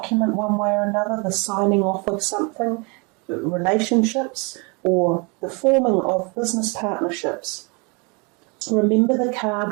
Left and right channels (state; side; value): quieter; left; 31.0 dB